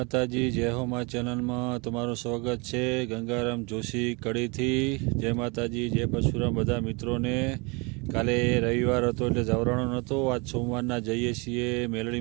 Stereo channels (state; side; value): quieter; left; 29.4 dB